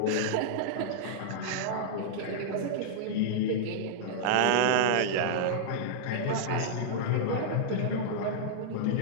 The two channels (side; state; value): both; different; correlation -0.02